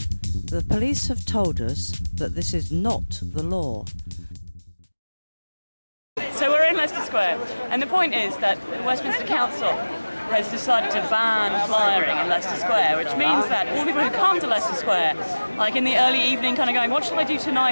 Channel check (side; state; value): both; inverted; correlation -1.00